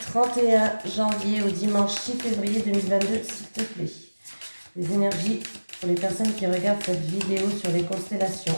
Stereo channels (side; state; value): both; inverted; correlation -1.00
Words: janvier au dimanche 6 février 2022, s'il te plaît. Les énergies pour les personnes qui regardent cette vidéo sur les constellations